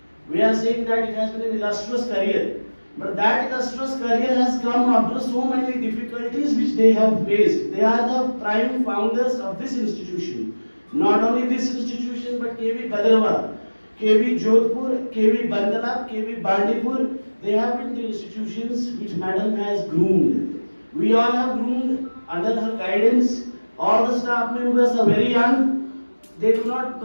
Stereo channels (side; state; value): both; inverted; correlation -1.00